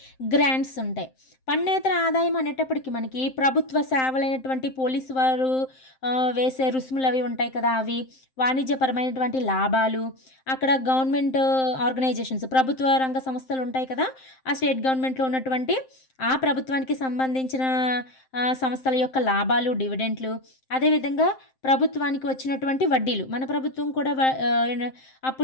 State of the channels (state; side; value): late; right; 7.7 ms